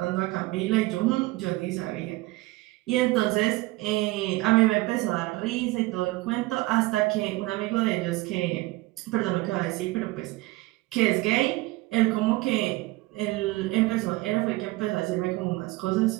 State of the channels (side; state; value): left; quieter; 20.4 dB